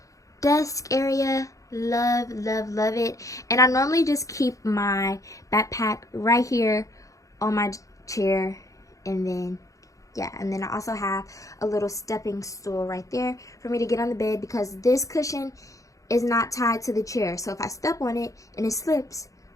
desk area. Love it. And I normally just keep my backpack right here on my chair, and then yeah, and then I also have a little stepping stool right there for me to get on the bed, because this cushion is not tied to the chair, so if I step on it and it slips,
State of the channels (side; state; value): right; late; 0.16 ms